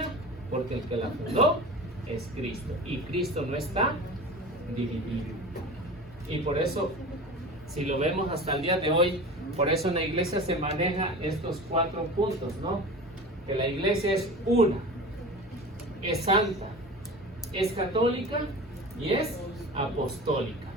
porque el que la fundó es Cristo. Y Cristo no está dividido. Y por eso, si lo vemos hasta el día de hoy, por eso en la iglesia se maneja estos 4 puntos, ¿no? Que la iglesia es una, es santa, es católica y es apostólica.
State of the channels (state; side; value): normal; both; correlation 0.34